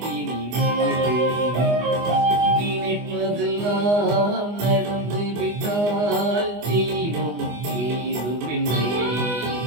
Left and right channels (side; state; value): left; late; 24 ms